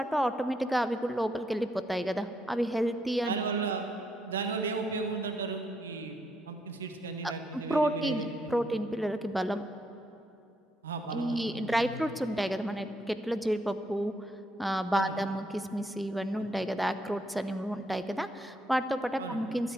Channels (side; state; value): both; normal; correlation 0.75